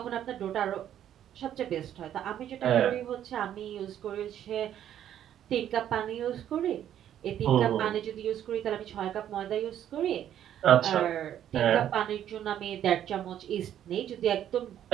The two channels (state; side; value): quieter; left; 10.7 dB